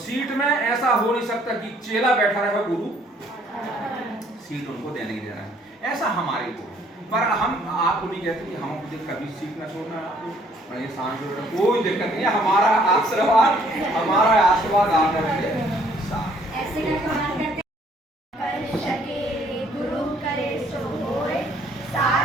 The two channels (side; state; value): both; normal; correlation 0.62